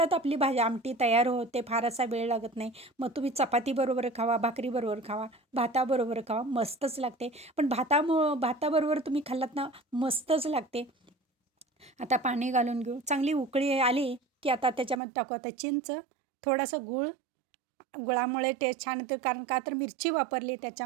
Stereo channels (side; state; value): left; drops out; at 15.0 s